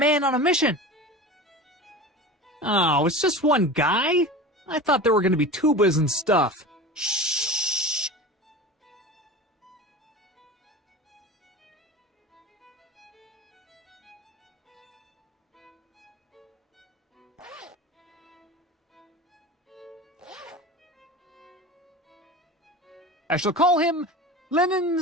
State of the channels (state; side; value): normal; both; correlation 0.32